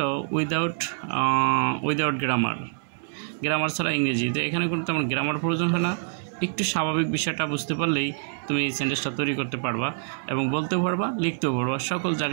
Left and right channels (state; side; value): silent; left; 61 dB below the other